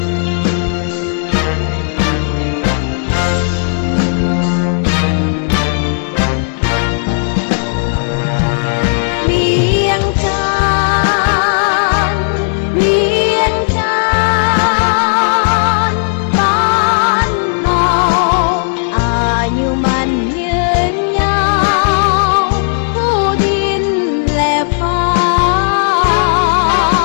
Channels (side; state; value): right; silent; digital silence